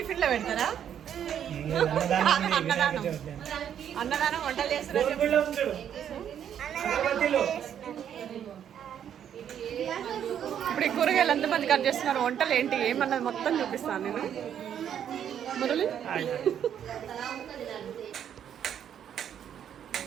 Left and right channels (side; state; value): left; quieter; 9.3 dB